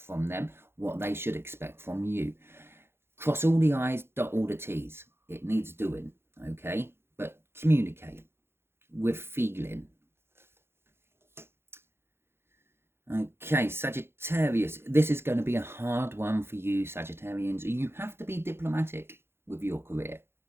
them, what they should expect from you. Cross all the I's, dot all the T's. It needs doing, okay? But communicate with feeling. Okay, Sagittarius. This is going to be a hard one for you, Sagittarians. You have to be diplomatic with your career,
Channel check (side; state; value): left; late; 0.12 ms